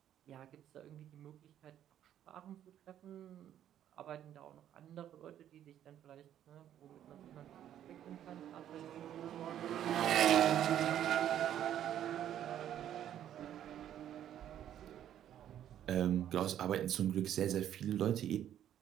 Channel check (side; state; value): left; quieter; 10.8 dB